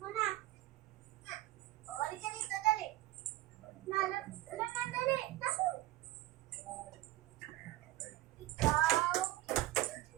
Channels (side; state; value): left; quieter; 16.1 dB